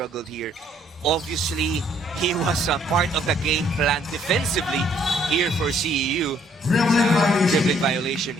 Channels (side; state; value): both; normal; correlation 0.65